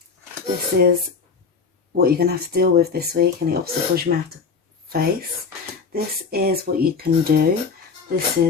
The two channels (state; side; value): quieter; right; 5.2 dB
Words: This is what you're going to have to deal with this week and the obstacles you may have to face. This is what you can do, this